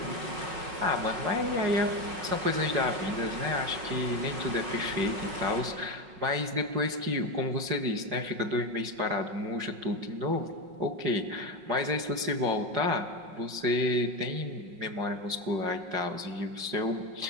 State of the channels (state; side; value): late; left; 5.5 ms